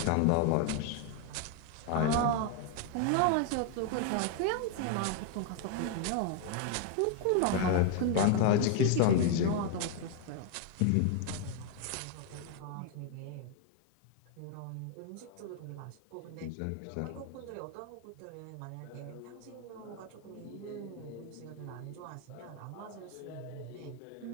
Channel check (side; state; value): both; different; correlation 0.00